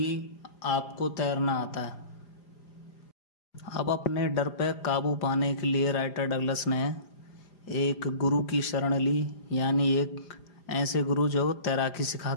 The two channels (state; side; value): late; right; 5.0 ms